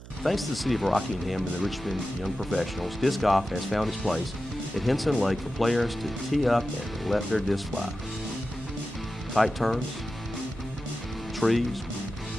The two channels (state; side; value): noise; right; hum, 16 dB below the sound